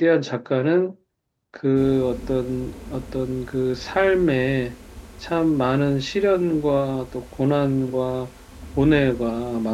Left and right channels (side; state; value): both; identical; correlation 1.00